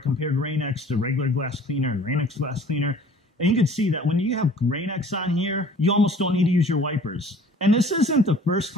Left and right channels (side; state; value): both; normal; correlation 0.50